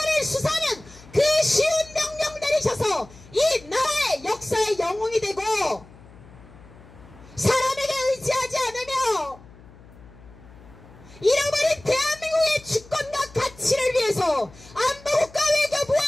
수사하는 그 쉬운 명령 내리셔서 이 나라의 역사의 영웅이 되고 사람에게 의지하지 않으며 잃어버린 대한민국의 주권과 가치를 위해서 안보국가 외교부와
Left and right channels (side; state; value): left; noise; hum, 22 dB below the sound